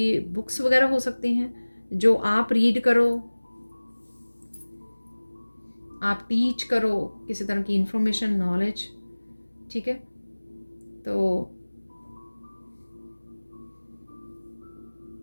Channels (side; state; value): both; inverted; correlation -1.00